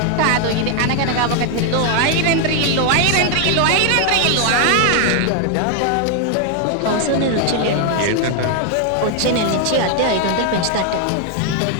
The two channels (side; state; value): both; different; correlation 0.00